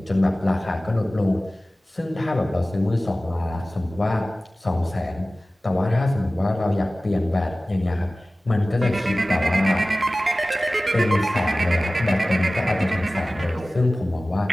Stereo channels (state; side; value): normal; both; correlation 0.97